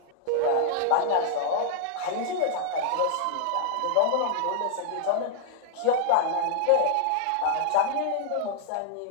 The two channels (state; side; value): different; both; correlation -0.01